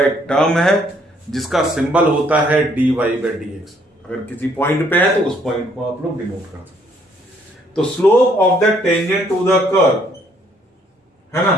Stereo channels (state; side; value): normal; both; correlation 0.66